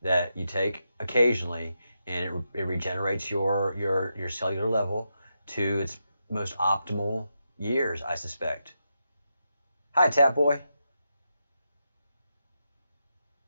that you take occasionally, and it regenerates your cellular level to its most optimal years, I suspect. Hi, Tap Boy.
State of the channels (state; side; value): inverted; both; correlation -0.85